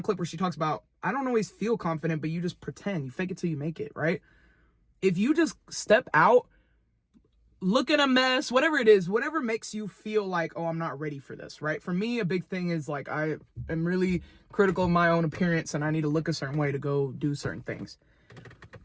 clip where she talks about, I don't always feel confident, but you just pretend. You fake it till you make it, right? If you just step out, look at a mess, whatever it is, whatever makes you feel like, oh, I'm not ready for this, right? For me, a big thing is like, I am really critical of my own appearance and I need to look a certain way to go do certain things.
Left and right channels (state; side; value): identical; both; correlation 1.00